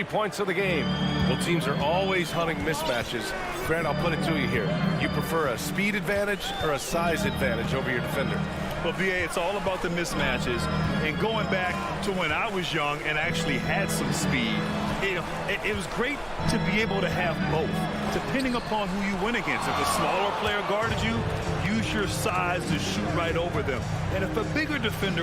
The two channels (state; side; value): identical; both; correlation 1.00